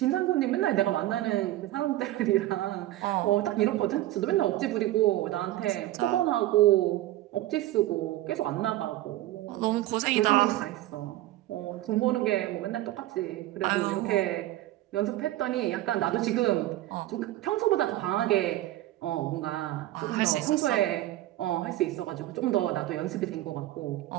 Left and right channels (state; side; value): quieter; left; 15.5 dB